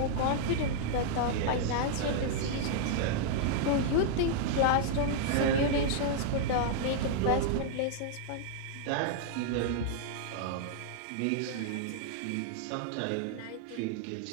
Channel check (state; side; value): different; both; correlation -0.01